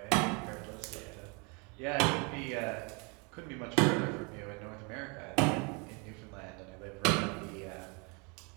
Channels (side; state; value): left; quieter; 30.7 dB